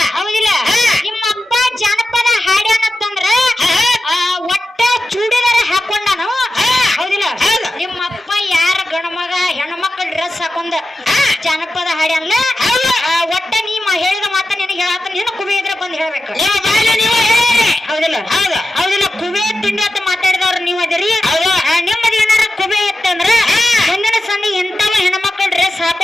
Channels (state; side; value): normal; both; correlation 0.92